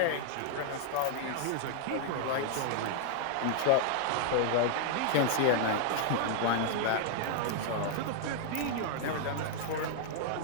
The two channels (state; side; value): different; both; correlation 0.00